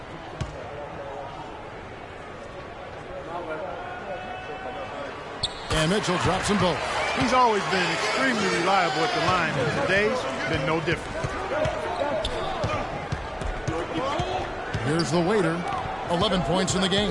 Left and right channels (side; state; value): both; identical; correlation 1.00